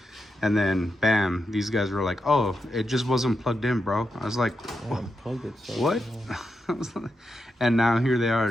And then bam, these guys were like, oh, it just wasn't plugged in, bro. I was like, what? And now here they are,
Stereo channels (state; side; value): normal; both; correlation 0.86